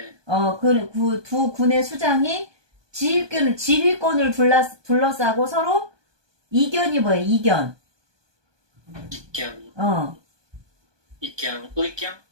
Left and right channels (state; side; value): late; left; 1.2 ms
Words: 두 군의 수장이 지휘권을 둘러싸고 서로 이견이 뭐예요? 이견. 의견?